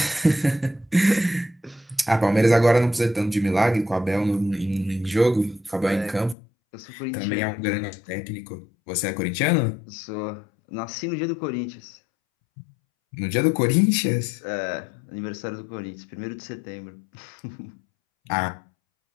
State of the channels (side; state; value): right; drops out; at 6.4 s